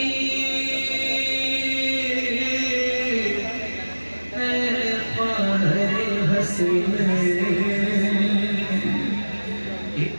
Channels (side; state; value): both; inverted; correlation -1.00